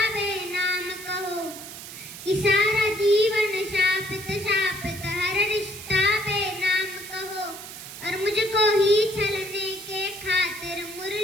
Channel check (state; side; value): noise; right; hiss, 12 dB below the sound